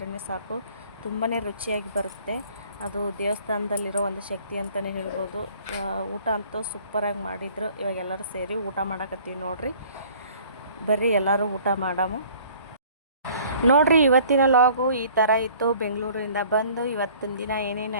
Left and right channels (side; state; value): both; inverted; correlation -0.53